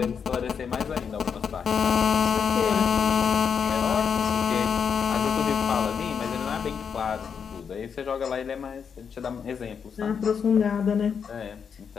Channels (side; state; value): right; quieter; 6.8 dB